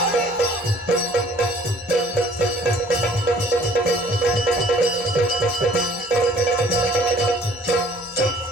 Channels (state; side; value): normal; both; correlation 0.55